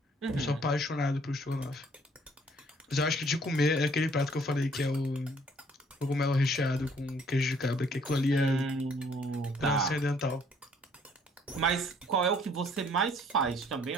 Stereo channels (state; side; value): normal; both; correlation 0.61